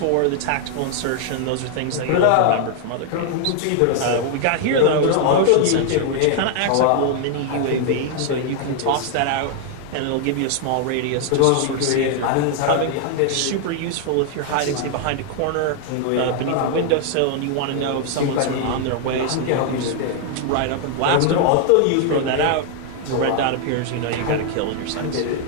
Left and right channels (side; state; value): both; different; correlation 0.00